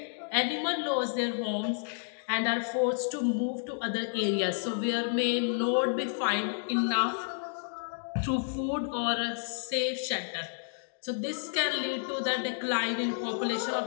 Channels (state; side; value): silent; right; digital silence